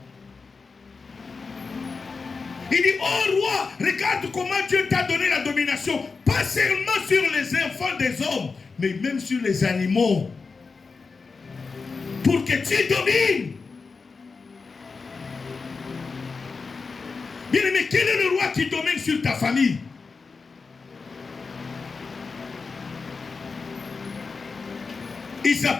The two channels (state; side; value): quieter; right; 4.6 dB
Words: Il dit, oh roi, regarde comment Dieu t'a donné la domination, pas seulement sur les enfants des hommes, mais même sur les animaux. Pour que tu domines. Bien aimé, quel est le roi qui domine sur ta famille? Il